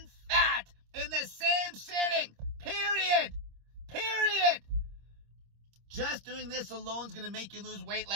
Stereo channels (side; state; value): left; late; 26 ms